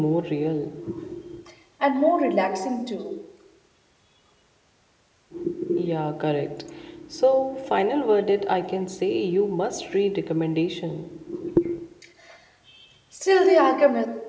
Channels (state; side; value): identical; both; correlation 1.00